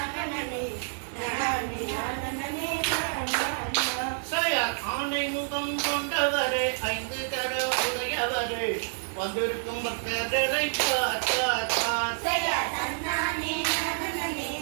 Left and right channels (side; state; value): left; silent; digital silence